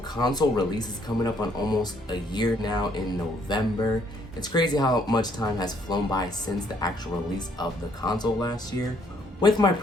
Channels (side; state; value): both; normal; correlation 0.66